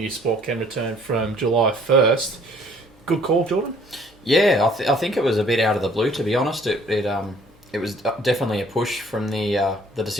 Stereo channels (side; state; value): both; normal; correlation 0.57